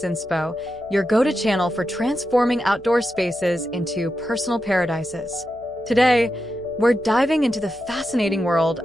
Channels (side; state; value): right; noise; hum, 25 dB below the sound